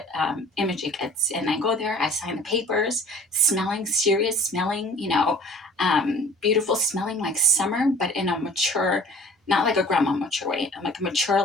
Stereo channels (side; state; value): both; normal; correlation 0.47